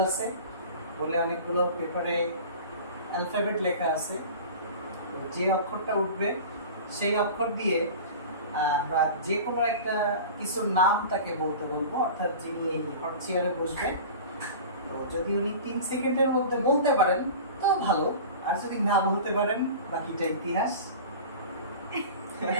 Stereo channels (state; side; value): inverted; both; correlation -0.36